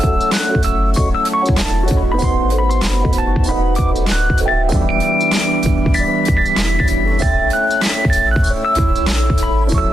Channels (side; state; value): both; normal; correlation 0.88